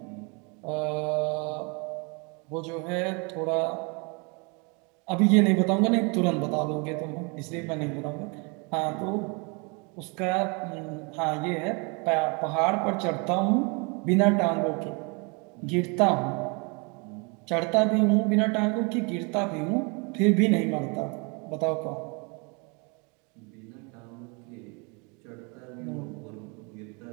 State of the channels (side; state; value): left; quieter; 32.0 dB